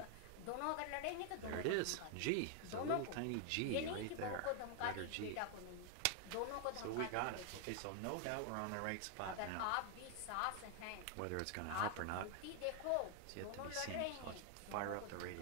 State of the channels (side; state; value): both; different; correlation 0.00